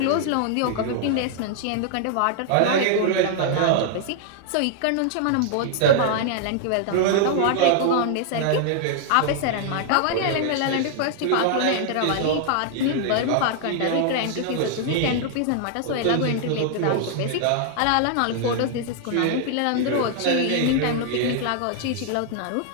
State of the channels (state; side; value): different; both; correlation -0.01